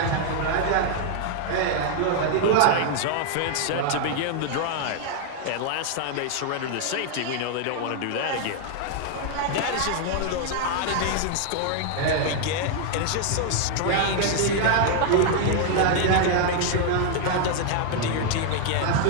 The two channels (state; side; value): different; both; correlation 0.00